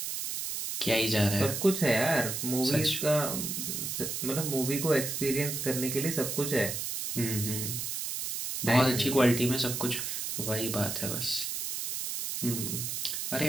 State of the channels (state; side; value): noise; right; hiss, 3 dB below the sound